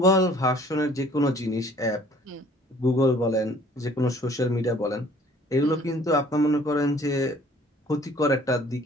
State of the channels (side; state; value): both; normal; correlation 0.55